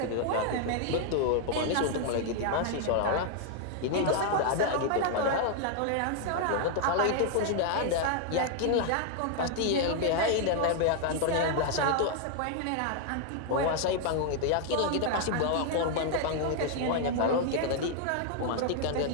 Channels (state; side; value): different; both; correlation 0.00